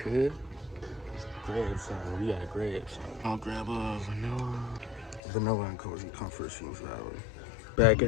Grab some. We gotta grab some. I'll grab a vanilla and cozy comfort seems valid. Back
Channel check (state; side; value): drops out; right; at 5.2 s